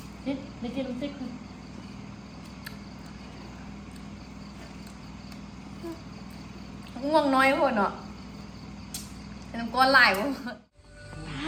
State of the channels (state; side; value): identical; both; correlation 1.00